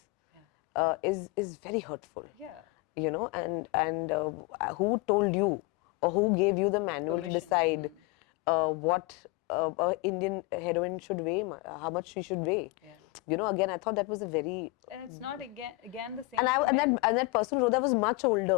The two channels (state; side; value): quieter; right; 23.1 dB